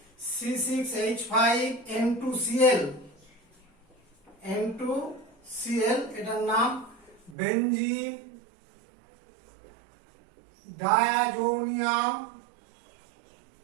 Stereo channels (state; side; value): drops out; left; at 7.4 s